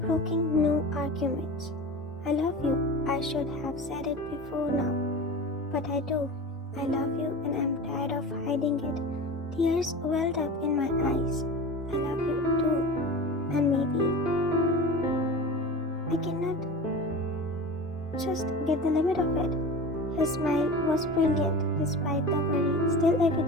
broking no arguments. I love you. I should have said it before now. But I do. I love you and I'm tired of hiding it. Tears welled up in my eyes. I love you too. And maybe I cannot just get the limit of it. His smile was brilliant despite the worry still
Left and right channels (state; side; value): normal; both; correlation 0.32